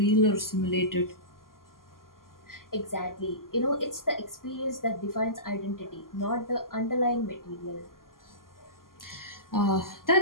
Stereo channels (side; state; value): right; late; 0.91 ms